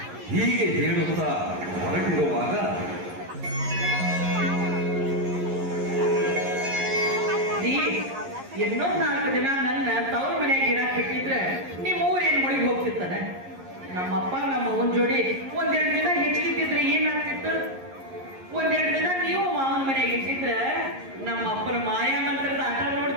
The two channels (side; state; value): left; late; 11 ms